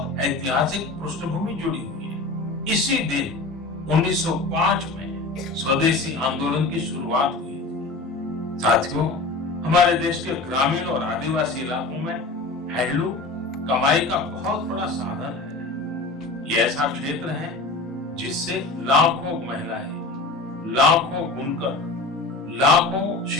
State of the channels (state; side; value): quieter; right; 3.4 dB